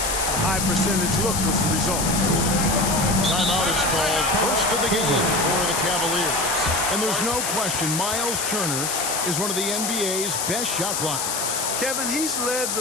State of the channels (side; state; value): left; noise; hiss, 1 dB below the sound